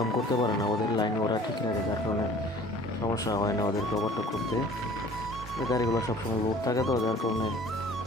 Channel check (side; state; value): both; normal; correlation 0.49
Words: করতে পারে না, ওদের লাইন ওরা ঠিক রাখে, যার কারণে সমস্যা হয় না ওদেরকে ওভারটেক করতে। এই গাড়িগুলো সবসময় লোড থাকে তো, যার কারণে